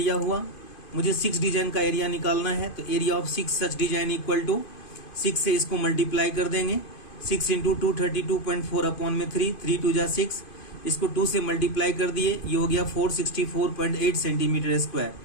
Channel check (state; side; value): late; right; 2.5 ms